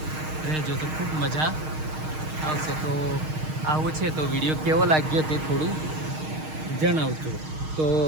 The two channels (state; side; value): late; left; 6.5 ms